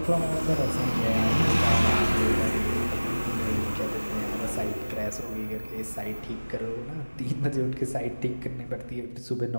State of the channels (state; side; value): inverted; both; correlation -1.00